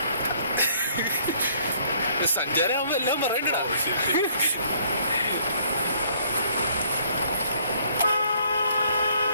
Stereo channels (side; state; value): both; inverted; correlation -0.63